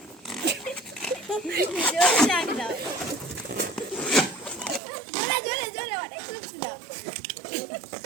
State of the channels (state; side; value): drops out; left; at 4.8 s